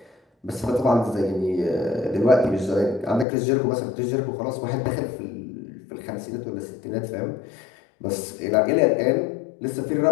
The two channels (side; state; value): right; drops out; at 3.2 s